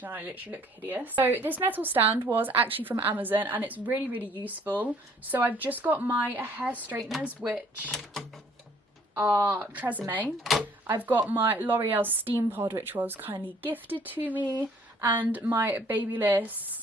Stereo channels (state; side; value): normal; both; correlation 0.59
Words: and I literally look hideous. So this metal stand was actually from Amazon and it's really useful. So I've just got my hair straighteners, which are Tresemme. I've got my L'Oreal Steam Pod, which was kindly gifted to me, and my